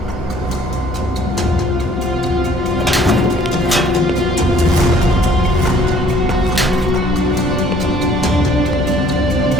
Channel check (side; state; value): both; normal; correlation 0.58